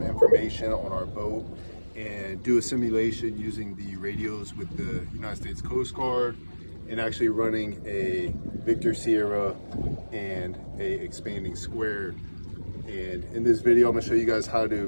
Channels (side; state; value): both; inverted; correlation -1.00